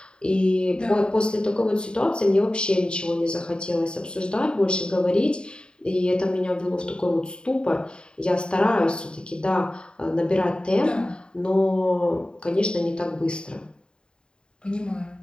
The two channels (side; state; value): right; late; 0.050 ms